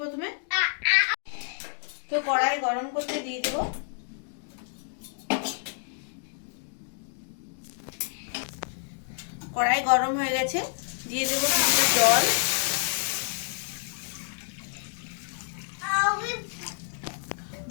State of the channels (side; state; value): right; silent; digital silence